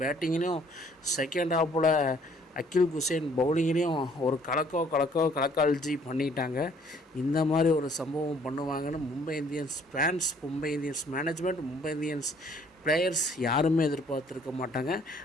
பேட்டிங்லேயும் செகண்ட் ஹாஃபில் அகில் குசேன் பவுலிங்லேயும் ஒரு கலக்கால்ஜி பண்ணிட்டாங்க. இந்த மாதிரி ஒரு சம்பவம் பண்ணுவாங்கன்னு Mumbai Indians fans, Mumbai Indians management, Mumbai Indians players யாருமே எதிர்பார்த்துருக்க மாட்டாங்க.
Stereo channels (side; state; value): both; normal; correlation 0.60